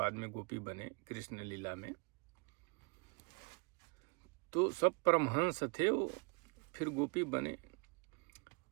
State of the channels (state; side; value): quieter; left; 33.5 dB